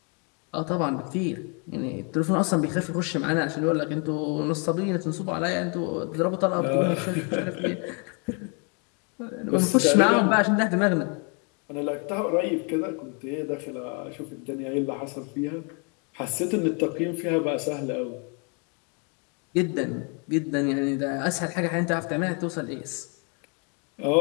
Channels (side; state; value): right; quieter; 36.1 dB